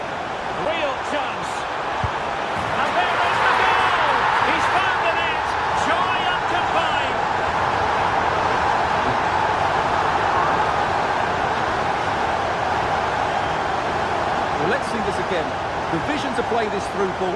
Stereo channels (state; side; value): identical; both; correlation 1.00